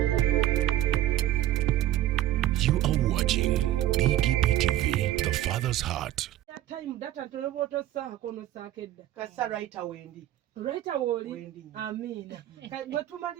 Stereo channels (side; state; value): left; quieter; 13.4 dB